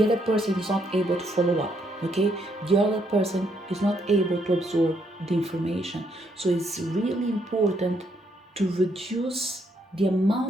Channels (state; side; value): normal; both; correlation 0.73